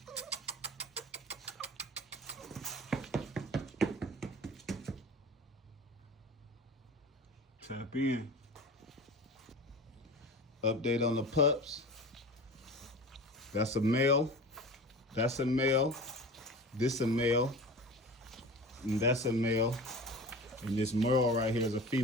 Tap in. Update on the pups. That's a male. That's a male. This a male. And that's a male. And this Merle right here is a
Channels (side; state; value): both; normal; correlation 0.35